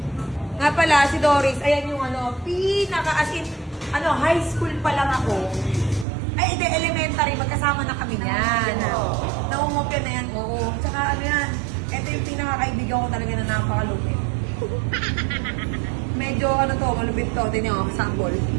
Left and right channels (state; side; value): drops out; left; at 6.1 s